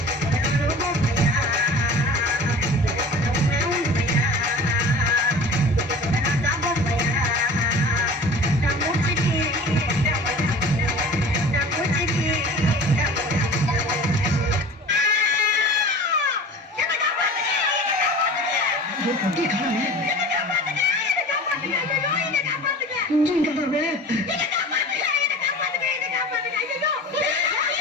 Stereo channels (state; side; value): normal; both; correlation 0.40